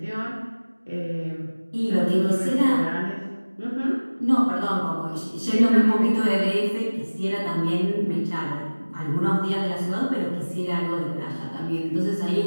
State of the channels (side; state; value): both; inverted; correlation -1.00